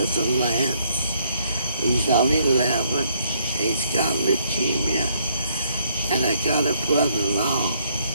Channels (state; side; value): inverted; both; correlation -0.70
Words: Lance. He's only 11. He's got leukemia. And I got a brother-in-law